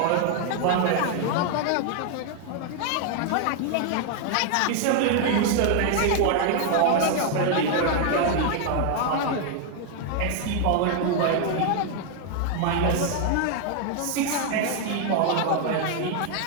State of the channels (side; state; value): both; different; correlation 0.00